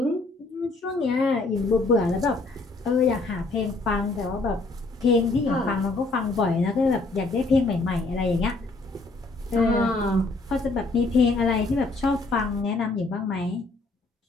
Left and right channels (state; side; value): quieter; right; 3.3 dB